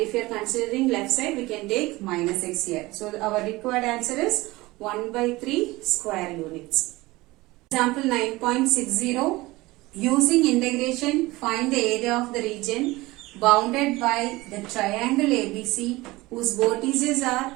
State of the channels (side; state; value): left; quieter; 20.3 dB